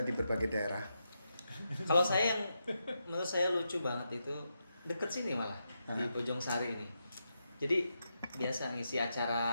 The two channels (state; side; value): inverted; both; correlation -0.85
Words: berbagai daerah. Kalau saya yang menurut saya lucu banget itu deket sini malah di Bojong Sari ini. Jadi biasa ngisi acara